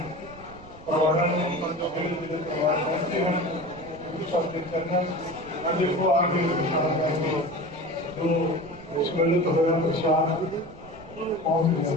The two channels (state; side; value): noise; right; rumble, 19 dB below the sound